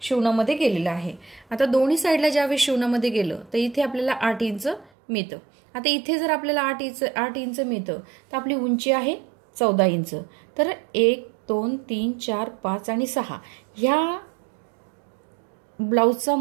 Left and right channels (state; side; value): drops out; left; at 4.9 s